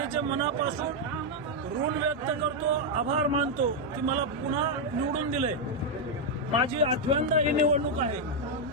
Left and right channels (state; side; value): normal; both; correlation -0.01